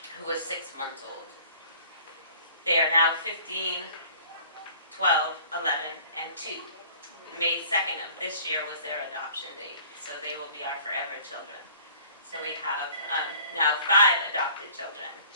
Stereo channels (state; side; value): inverted; both; correlation -0.50